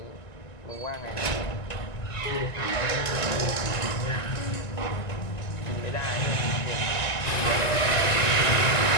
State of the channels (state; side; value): late; right; 1.9 ms